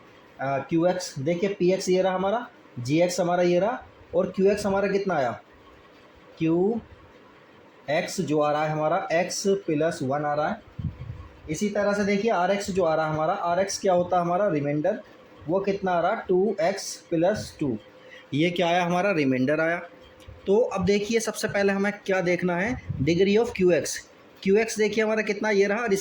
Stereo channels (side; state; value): both; identical; correlation 1.00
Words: क्यू एक्स। देखिए पी एक्स ये रहा हमारा, जी एक्स हमारा ये रहा, और क्यू एक्स हमारा कितना आया, क्यू एक्स जो आ रहा है हमारा x प्लस 1 आ रहा है। इसी तरह से देखिए आर एक्स जो आ रहा है हमारा, आर एक्स क्या होता है हमारा रिमाइंडर, वो कितना आ रहा 2x प्लस 2, ये क्या आया हमारा रिमाइंडर आया। तो अब देखिए सबसे पहले हमें क्या देखना है, degree of Q x. Q x देखिए हमारा कितना ये रहा, और